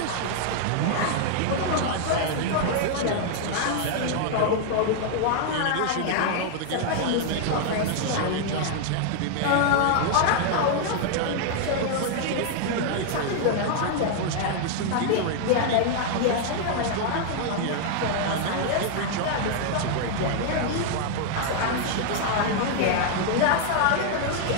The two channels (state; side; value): different; both; correlation 0.00